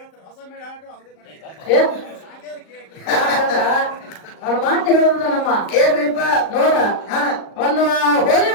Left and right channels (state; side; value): late; right; 38 ms